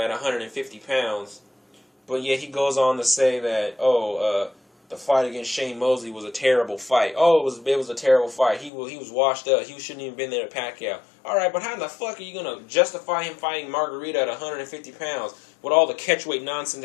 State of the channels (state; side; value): drops out; right; at 8.7 s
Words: at 150 pounds, but yet he goes on to say that, the fight against Shane Mosley was a terrible fight. Oh, it was a terrible fight. He was washed up. He shouldn't even been there to Pacquiao. All right, but how the fuck are you going to justify him fighting Margarito at 150 pounds with all the catchweight nonsense